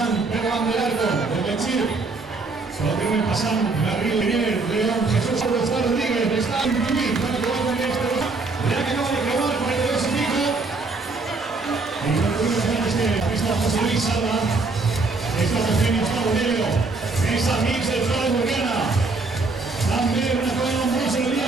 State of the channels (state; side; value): quieter; left; 3.7 dB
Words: Van del Arco, de Benchir, solo tienen pasando Garrido Miguel, León, Jesús Rodríguez, está en Tubí, para que vuelvan este, ya que acaba de probar 42 y pico, y no tuvimos ganas que está José Luis Salva, está Eugenio Bonello, esa mix de Flores Burgana, también una cosa nombrosa en el día